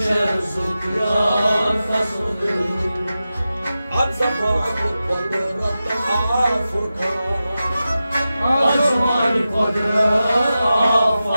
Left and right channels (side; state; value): both; inverted; correlation -0.93